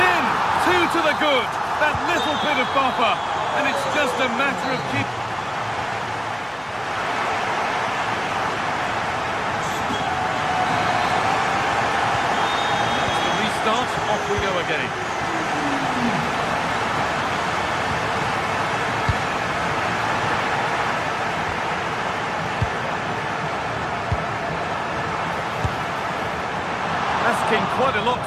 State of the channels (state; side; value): identical; both; correlation 1.00